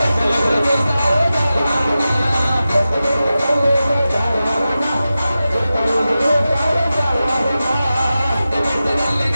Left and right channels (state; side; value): inverted; both; correlation -0.94